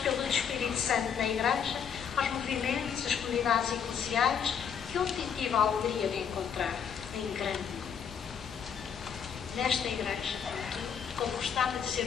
Espírito Santo na Igreja, aos movimentos, as comunidades eclesiais, que eu tive a alegria de encontrar em grande número. Nesta Igreja, como gostava de dizer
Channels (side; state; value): right; quieter; 7.5 dB